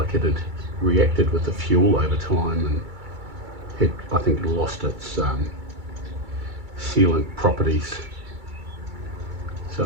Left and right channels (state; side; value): late; left; 2.3 ms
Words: it had reacted with the fuel over time and had, I think, lost its sealant properties. So